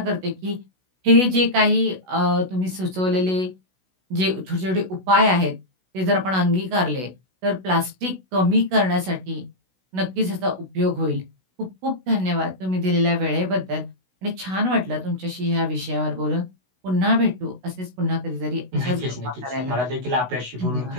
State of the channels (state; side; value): late; left; 16 ms